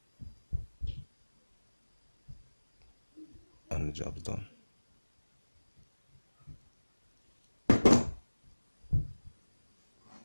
And the job's done.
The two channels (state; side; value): inverted; both; correlation -1.00